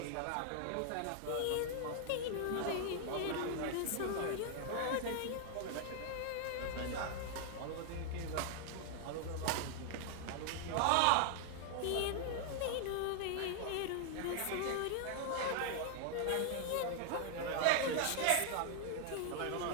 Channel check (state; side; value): different; both; correlation 0.00